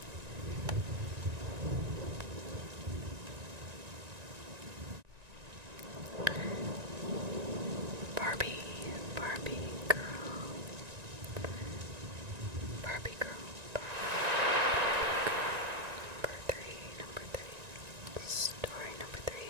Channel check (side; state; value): left; late; 1.9 ms